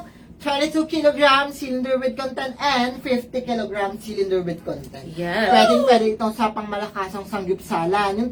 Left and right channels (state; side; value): identical; both; correlation 1.00